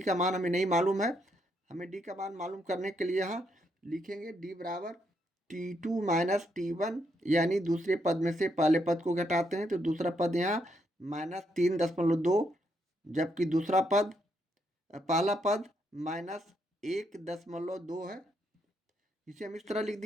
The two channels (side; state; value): both; normal; correlation 0.77